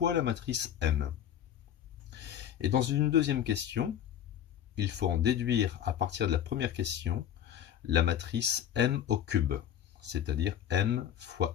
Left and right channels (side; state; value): right; quieter; 10.0 dB